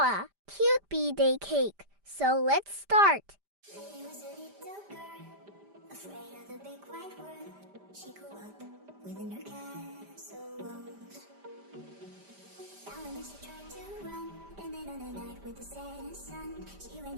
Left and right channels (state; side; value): late; left; 5.0 ms